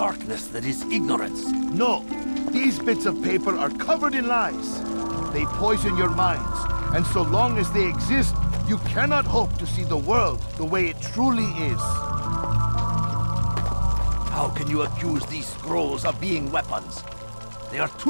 that is ignorance. No, these bits of paper are covered in lies. They poison your minds, and so long as they exist, you cannot hope to see the world the way it truly is. How can you accuse these scrolls of being weapons? They are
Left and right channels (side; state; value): both; inverted; correlation -1.00